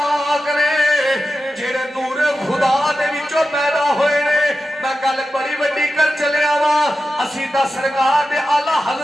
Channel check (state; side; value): normal; both; correlation 0.92